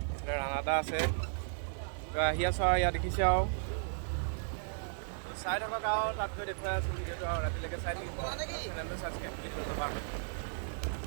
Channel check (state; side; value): silent; left; digital silence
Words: এইফালে ৰাণাদা আছে। আহি আছোঁ আৰু ইয়াত দেখিছে আৰু চাই থাকক আৰু তাত গৈ দেখুৱাই আছোঁ ভিডিঅ'টো আৰু ৰাতিলৈকে চাই থাকিব। চেনেলটো ছাবস্ক্ৰাইব কৰি দিব নাপাহৰিব।